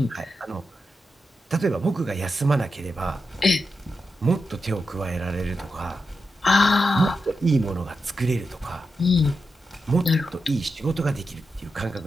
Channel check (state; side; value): normal; both; correlation 0.88